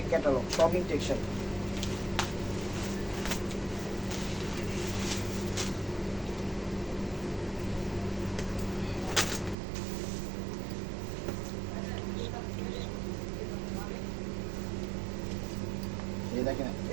ক্যাটালগ, সব ইনটেক শাড়ি। দেখেন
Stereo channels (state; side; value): drops out; left; at 9.6 s